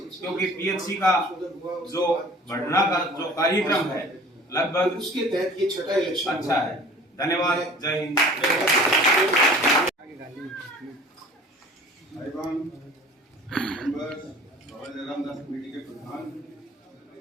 क्योंकि पीएचसी का जो बढ़ना का जो कार्यक्रम है लगभग उसके तहत ये छठा इलेक्शन अच्छा है। धन्यवाद। जय हिंद। रामदास कमेटी के प्रधान,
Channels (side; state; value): both; normal; correlation 0.46